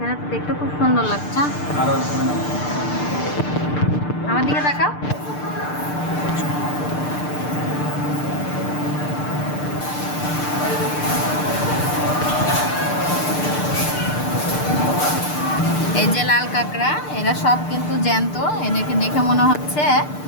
তো দেখতে খুব সুন্দর লাগছে। আরো আমার দিকে তাকাও। এই যে লাল কাঁকড়া এরা সব কিন্তু জ্যান্ত এদেরকে দেখে মনে হচ্ছে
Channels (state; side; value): late; right; 6.7 ms